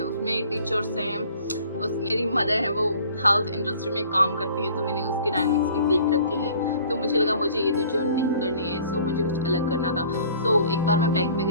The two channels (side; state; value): both; inverted; correlation -0.52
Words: उसमें टीचर्स हैं, उसमें मेरी मदर है वो हेल्थ इंडस्ट्री में काम करती है तो मैंने उसके डायनामिक्स भी देख रखे हैं. तो मुझे लगा मुझे ये तो जॉब नहीं करनी है. सो मुझे कुछ अलग करना था. सो एक बार मैं बैंक में